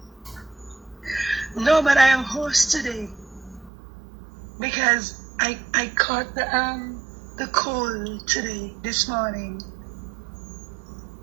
No, but I am hoarse today because I caught the cold today, this morning.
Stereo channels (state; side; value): drops out; left; at 3.7 s